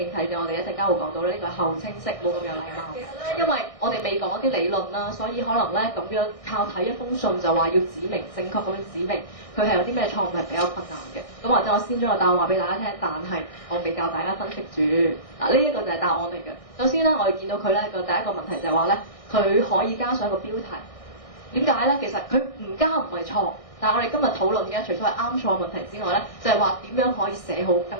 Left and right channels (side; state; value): right; late; 1.6 ms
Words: 啟者我哋一陣間會講到咧，呢個係後清晰，冇咁有禮貌。其實咧，因為我哋未講一啲理論啦，所以可能咧咁樣靠睇一封信就話要指明正確咁樣指明佢係有啲咩錯誤係比較困難嘅。咁或者我先將個答案話俾大家聽，但係我未教大家分析住。呢一個就係答案嚟嘅。首先咧，我哋見到佢咧個第一個問題就係話咧，佢可以加上一個標題。點解咧？其實佢唔加唔係錯。但係我哋今日討論嘅，除咗係啱錯問題之外咧，就係話點樣可以